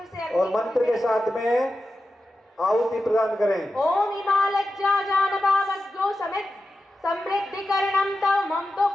से और मंत्र के साथ में आहुति प्रदान करें। ओम हिमालज्जा जानबावज्ञो समित समृद्धिकरणं तव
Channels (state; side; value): normal; both; correlation 0.92